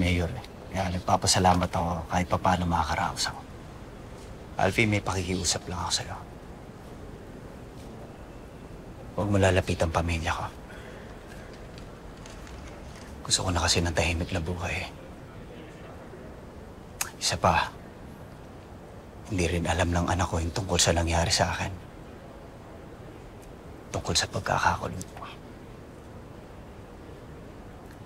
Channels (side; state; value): both; identical; correlation 1.00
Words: Kaya nagpapasalamat ako kahit pa paano makakaraos ako. Alfie, may pakikiusap lang ako sa'yo. Huwag mo lalapit ang pamilya ko. Gusto ko na kasi ng tahimik na buhay. Isa pa, hindi rin alam ng anak ko yung tungkol sa nangyari sa akin. Tungkol sa pagkakakulong ko.